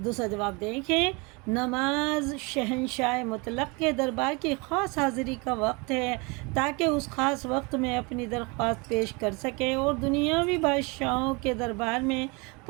دوسرا جواب دیکھیں، نماز شہنشاہ مطلق کے دربار کی خاص حاضری کا وقت ہے، تاکہ اس خاص وقت میں اپنی درخواست پیش کر سکے، اور دنیاوی بادشاہوں کے دربار میں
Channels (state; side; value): quieter; left; 28.5 dB